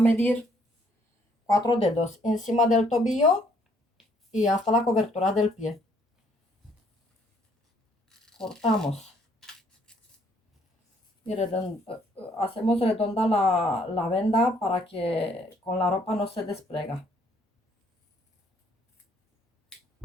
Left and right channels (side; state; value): both; normal; correlation 0.66